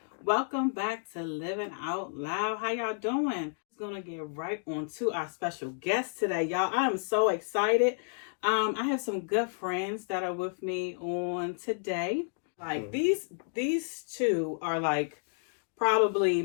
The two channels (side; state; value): right; silent; digital silence